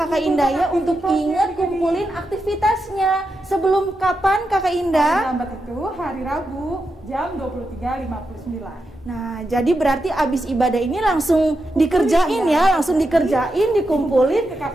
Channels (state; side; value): normal; both; correlation 0.87